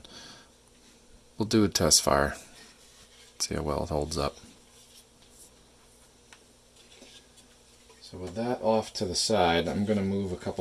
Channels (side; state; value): both; identical; correlation 1.00